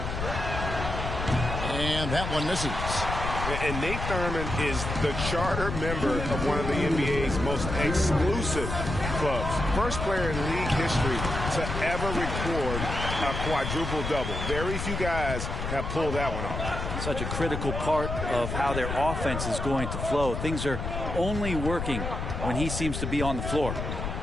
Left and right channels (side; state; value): left; noise; rumble, 4 dB below the sound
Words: And that one misses. And Nate Thurman is the charter member of one of the NBA's most exclusive clubs. First player in league history to ever record a quadruple-double. Very few guys have pulled that one off. Such a critical part of how their offense is going to flow. Things are only working when he seems to be on the floor.